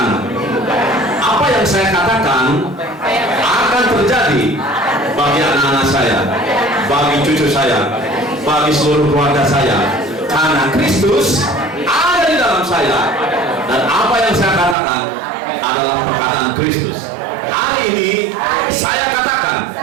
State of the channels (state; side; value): drops out; left; at 14.8 s